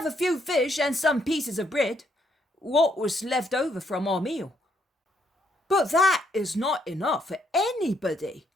a few fish and some pieces of bread, what was left over from our meal. But that is not enough for anybody.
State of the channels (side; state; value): both; normal; correlation 0.73